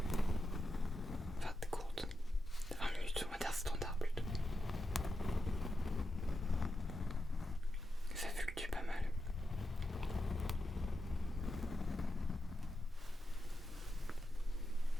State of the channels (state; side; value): normal; both; correlation 0.88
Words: Enfin, courtes, 20 minutes, on va dire standard plutôt. Ça fluctue pas mal.